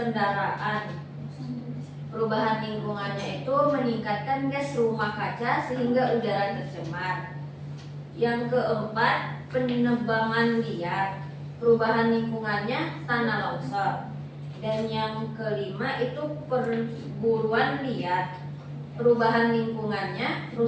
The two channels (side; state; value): both; identical; correlation 1.00